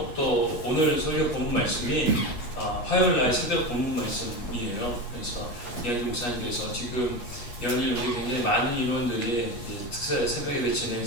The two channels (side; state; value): right; late; 8.3 ms